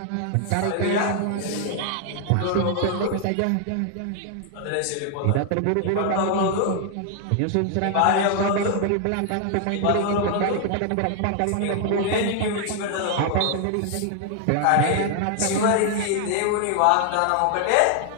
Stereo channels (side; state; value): both; different; correlation 0.00